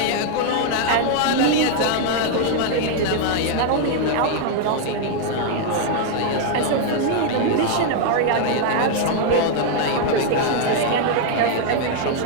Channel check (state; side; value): different; both; correlation 0.00